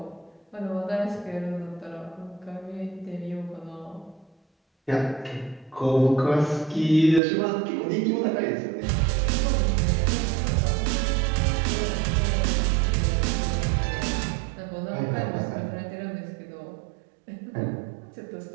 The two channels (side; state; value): left; drops out; at 7.2 s